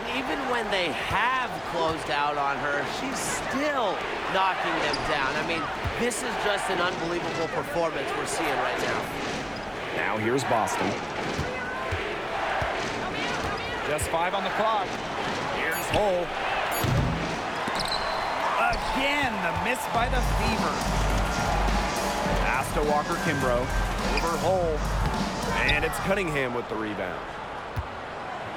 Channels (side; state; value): both; identical; correlation 1.00